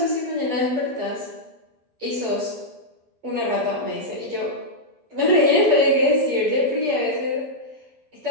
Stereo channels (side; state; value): left; late; 12 ms